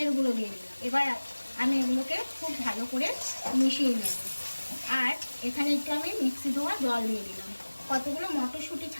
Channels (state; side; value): inverted; both; correlation -1.00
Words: গুঁড়ো দিয়ে দিলাম। এবার আমি এগুলোকে খুব ভালো করে মিশিয়ে নেব। আর এখানে একটু আমি মিক্সি ধোয়া জল দিয়ে দিলাম। কতগুলো মটরশুঁটি